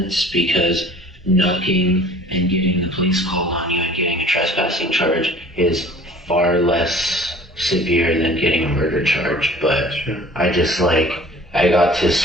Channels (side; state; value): both; normal; correlation 0.48